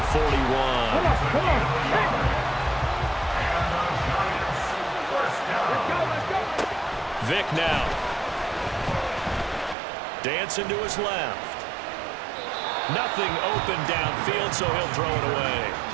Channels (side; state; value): left; drops out; at 9.8 s